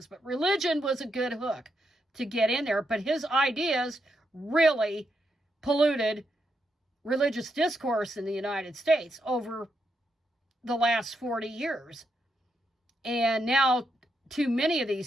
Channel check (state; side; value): normal; both; correlation 0.81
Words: But religion was a good hook to get in there. But his ideas really polluted religious discourse in the United States over the last 40 years. And now too many of